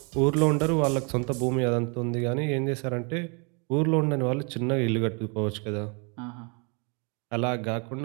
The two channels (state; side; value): quieter; left; 34.6 dB